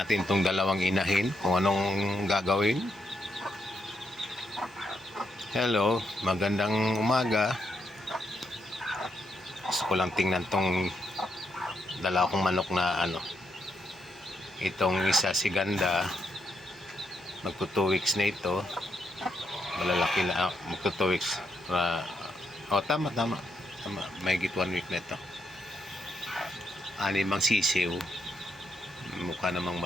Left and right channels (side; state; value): both; normal; correlation 0.79